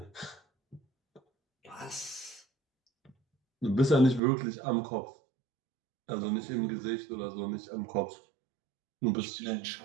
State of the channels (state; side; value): drops out; left; at 4.2 s